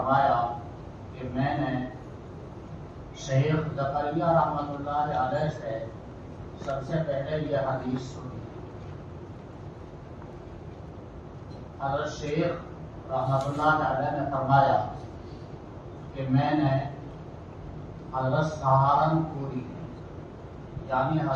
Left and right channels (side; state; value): both; identical; correlation 1.00